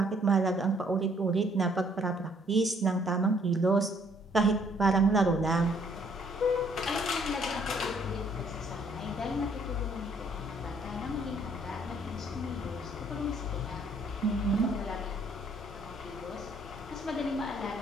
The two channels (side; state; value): both; normal; correlation 0.64